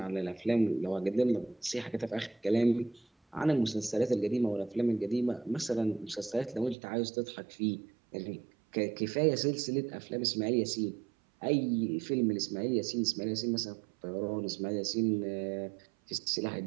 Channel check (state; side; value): drops out; left; at 6.8 s